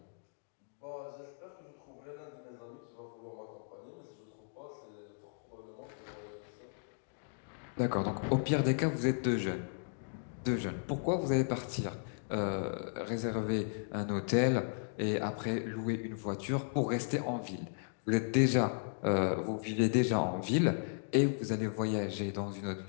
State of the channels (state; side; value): silent; right; digital silence